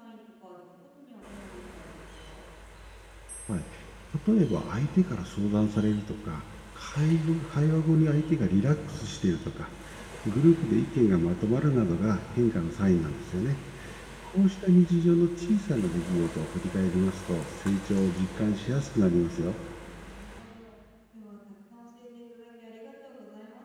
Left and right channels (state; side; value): identical; both; correlation 1.00